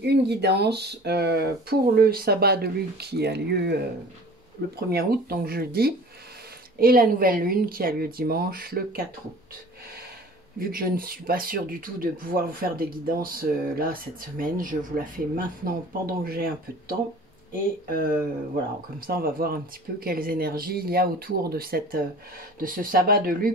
une guidance pour le sabbat de lune qui a lieu le 1er août, donc jeudi, et la nouvelle lune qui a lieu dimanche, le 4 août. Vu que je ne suis pas sûre du tout de pouvoir vous faire des guidances là cette semaine, je vous la fais maintenant pendant que j'ai un peu de temps. Et voilà, comme ça on va voir un petit peu quelles énergies il y a autour de ce sabbat de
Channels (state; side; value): normal; both; correlation 0.44